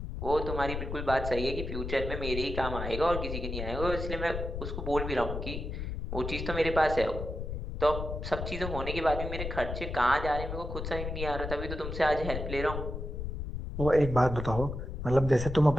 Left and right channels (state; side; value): noise; left; rumble, 5 dB below the sound